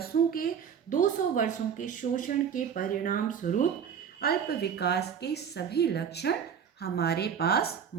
200 वर्षों के शोषण के परिणाम स्वरूप अल्प विकास के सभी लक्षण हमारे पास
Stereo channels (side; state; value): left; quieter; 7.6 dB